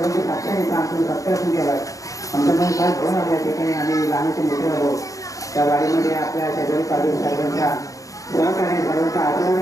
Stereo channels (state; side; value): late; right; 0.16 ms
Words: साक्षर येतं आपण सत्कार पण केला। आमचं मन फार घेऊन आपल्या ठिकाणी आम्ही लहानाचे मोठे झालो। त्या वाडीमध्ये आपल्या शेजारी पाटील सर्वांच्या सहकार्याने सर्वांच्या आदराने